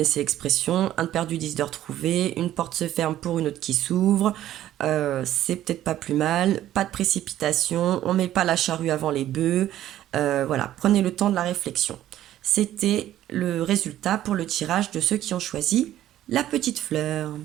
l'expression, un de perdu, 10 de retrouvé, une porte se ferme pour une autre qui s'ouvre. C'est peut-être pas plus mal, pas de précipitation, on met pas la charrue avant les bœufs. Voilà, prenez le temps de la réflexion. C'était le résultat pour le tirage de ceux qui ont choisi la petite fleur.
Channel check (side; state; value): left; quieter; 12.9 dB